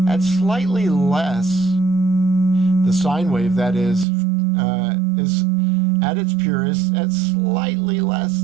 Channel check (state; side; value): drops out; left; at 4.0 s